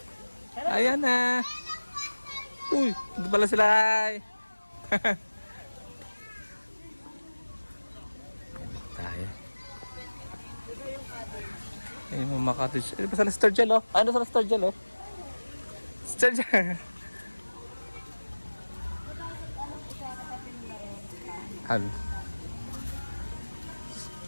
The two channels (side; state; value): both; inverted; correlation -1.00